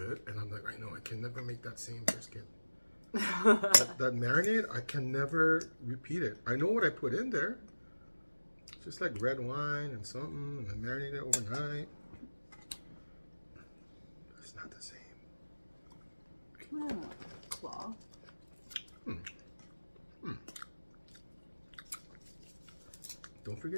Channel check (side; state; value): both; inverted; correlation -1.00